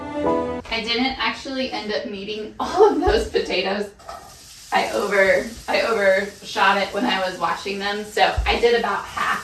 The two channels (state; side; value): identical; both; correlation 1.00